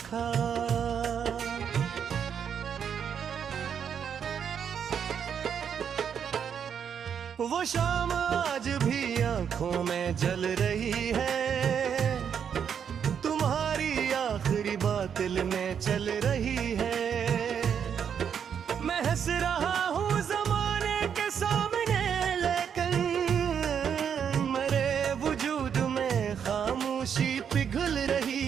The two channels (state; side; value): quieter; left; 7.8 dB